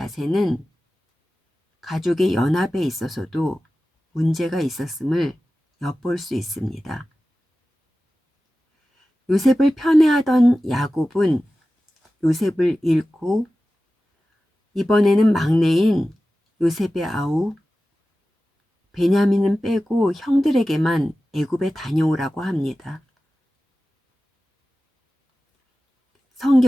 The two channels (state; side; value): normal; both; correlation 0.95